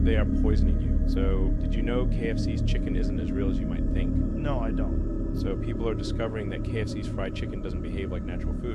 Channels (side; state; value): both; identical; correlation 1.00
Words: They are poisoning you. So, did you know KFC's chicken isn't as real as you might think? No, I don't. So, people are discovering that KFC's fried chicken doesn't behave like natural